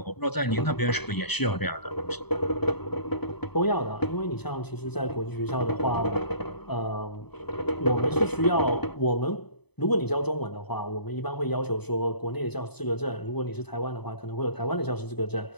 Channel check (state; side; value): late; right; 0.98 ms